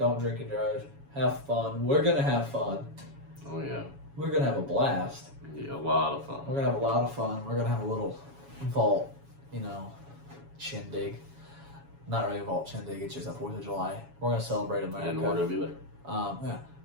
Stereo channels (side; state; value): left; late; 7.2 ms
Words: drink and drive. Have fun. We're gonna have fun. Oh yeah. We're gonna have a blast. Yeah, a lot of fun. We're gonna have a lot of fun. We're gonna have a little vault, shindig. Not really a vault shindig. It's just a 4th of July. We're gonna celebrate America. And we're gonna be there. Yeah.